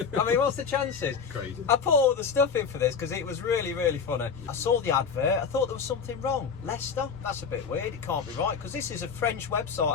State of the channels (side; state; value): right; quieter; 6.1 dB